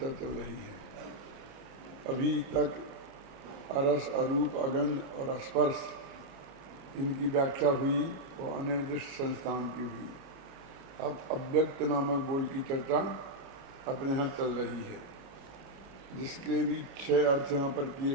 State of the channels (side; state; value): left; late; 29 ms